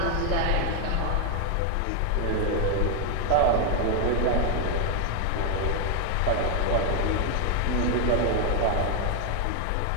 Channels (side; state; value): both; different; correlation 0.00